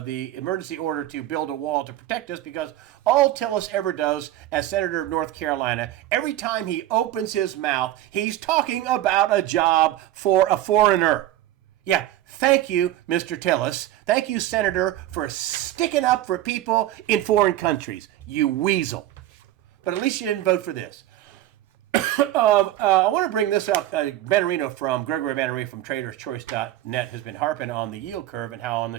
emergency order to build a wall to protect us, because all Tillis ever does as senator of North Carolina, every time he opens his mouth, he's talking about a job for a foreigner. Yeah, thank you, Mr. Tillis. Thank you, Senator, for sticking up for people in foreign countries. You weasel. But at least you didn't vote for this. I want to bring this up. Benarino from Gregory Benarino from TradersChoice.net has been harping on the yield curve and how on the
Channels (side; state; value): left; quieter; 14.0 dB